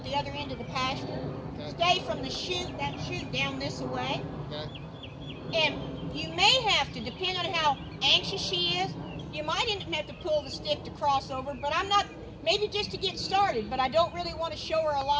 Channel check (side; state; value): both; identical; correlation 1.00